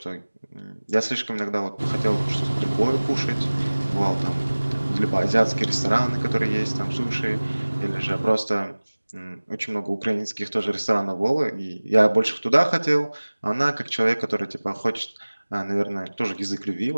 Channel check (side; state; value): both; inverted; correlation -1.00